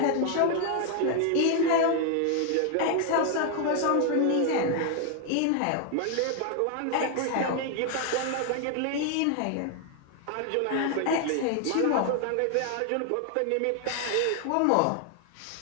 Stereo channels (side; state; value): both; different; correlation 0.00